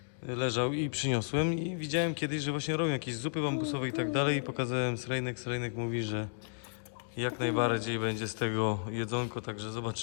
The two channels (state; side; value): silent; right; digital silence